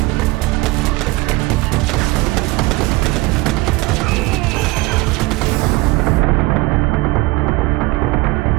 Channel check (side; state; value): left; quieter; 21.6 dB